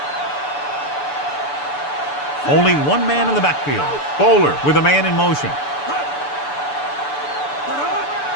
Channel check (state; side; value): late; right; 6.9 ms